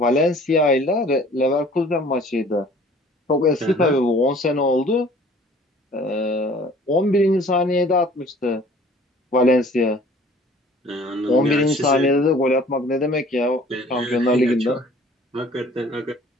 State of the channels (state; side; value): normal; both; correlation 0.51